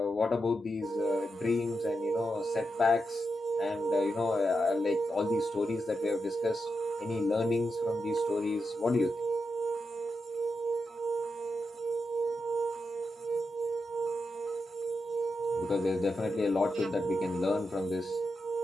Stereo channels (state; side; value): normal; both; correlation 0.87